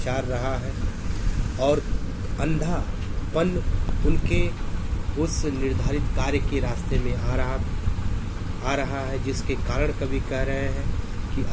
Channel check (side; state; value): both; identical; correlation 1.00